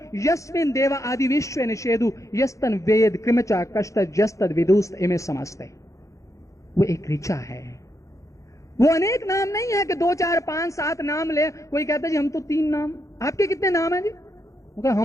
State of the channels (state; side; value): late; right; 0.15 ms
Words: यस्मिन देवा आदि विश्व निषेधु यस्तन वेद कृमचा कष्ट जस्तद विदुस्त इमे समस्ते। वो एक ऋचा है, वो अनेक नाम नहीं है कि 2, 4, 5, 7 नाम ले। कोई कहता है जी हम तो 3 नाम। आपके कितने नाम है जी?